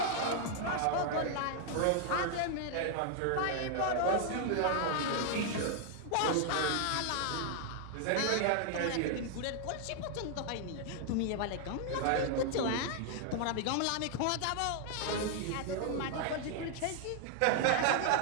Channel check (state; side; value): different; both; correlation 0.00